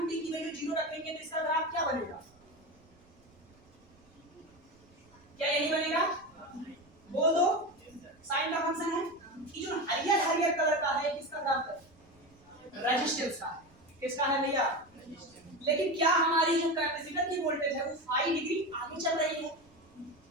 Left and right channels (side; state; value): right; noise; rumble, 29 dB below the sound